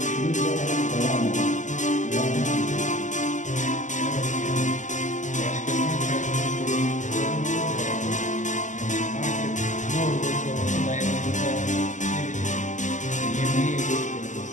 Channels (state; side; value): late; right; 0.36 ms